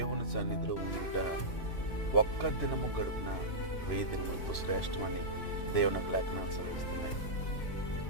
సన్నిధిలో ఉండుట ఒక్క దినము గడుపున 1000 దినములతో శ్రేష్టమని దేవుని లేఖనాలు సెలవిస్తున్నాయి.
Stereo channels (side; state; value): right; late; 3.0 ms